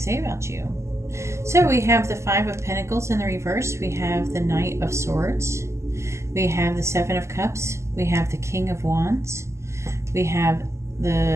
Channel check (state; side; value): late; left; 0.13 ms